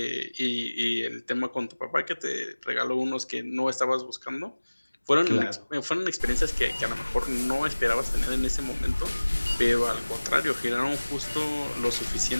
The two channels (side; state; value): both; inverted; correlation -1.00